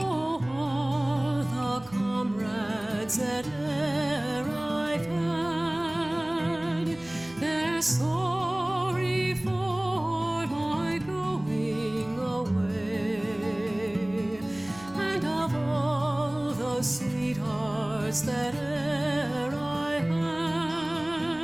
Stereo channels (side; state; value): right; noise; hum, 23 dB below the sound